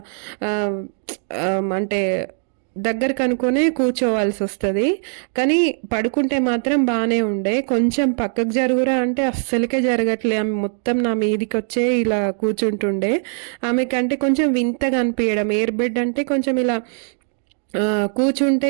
అంటే దగ్గరకు అనుకునే కూర్చోవాల్సి వస్తుంది. కానీ పడుకుంటే మాత్రం బాగానే ఉండే. కొంచెం పక్కకు జరుగురా అంటే అస్సలకే జరగట్లే. ఆమె మొత్తం నా మీదికి వచ్చే ఇలా కూర్చుంటుండే. ఆమెకంటే కొంచెం వింతగా అనిపించడం. ఎయిర్ బెడ్ అంటే కొంచెం ఇలా కూర్చుంటే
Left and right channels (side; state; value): left; silent; 58 dB below the other